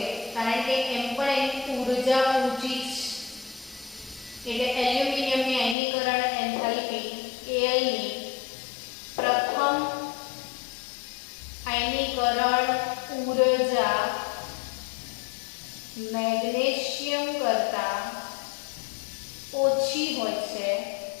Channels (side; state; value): right; drops out; at 5.8 s